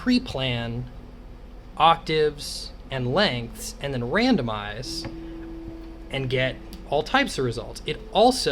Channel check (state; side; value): identical; both; correlation 1.00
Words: octaves and lengths, and then randomize and get all types of results. It